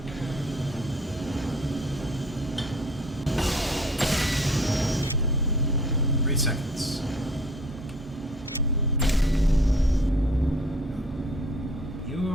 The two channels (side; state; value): both; normal; correlation 0.53